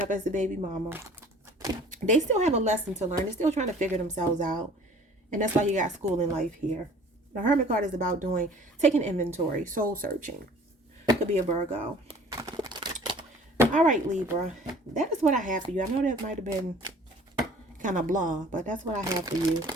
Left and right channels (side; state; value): both; normal; correlation 0.50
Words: up as the baby mama. They still have a lesson to learn. They're still trying to figure themselves out. And that's why you got school in life here. The Hermit card is about taking inventory, soul searching. Could be a Virgo. All right, Libra. That is what I have for you. I know that might have been kind of blah, but that's what I have for you.